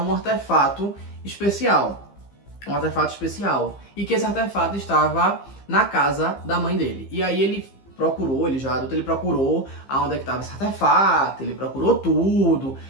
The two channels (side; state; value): right; late; 15 ms